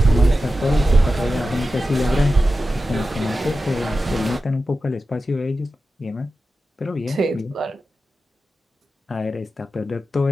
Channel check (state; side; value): normal; both; correlation 0.92